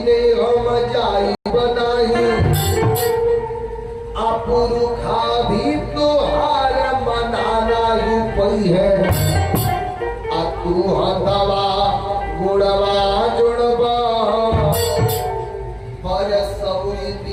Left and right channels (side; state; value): both; identical; correlation 1.00